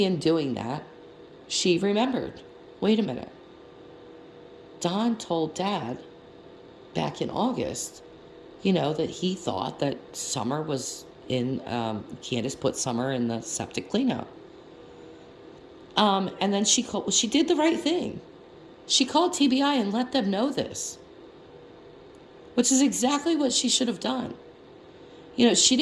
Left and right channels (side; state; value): both; identical; correlation 1.00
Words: in doing that, she remembered, wait a minute. Don told Dad back in August, that he thought that Summer was in, Candace put Summer in the septic cleanout. And then she did the right thing. She called TBI and let them know this, which is exactly what she should have done. She